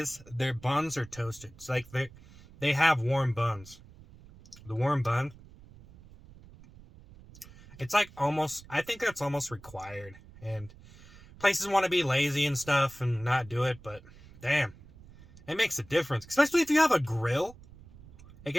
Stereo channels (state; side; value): noise; right; rumble, 21 dB below the sound